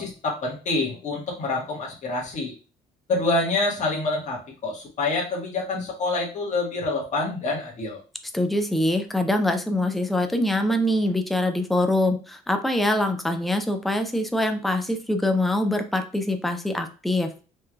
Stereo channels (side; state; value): both; normal; correlation 0.64